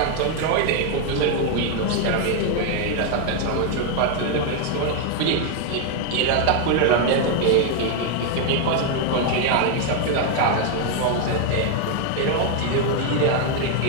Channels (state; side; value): different; both; correlation 0.01